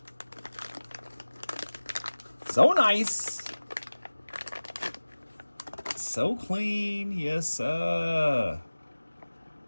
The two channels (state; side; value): inverted; both; correlation -1.00